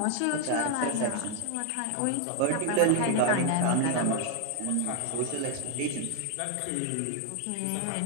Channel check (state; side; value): different; both; correlation 0.00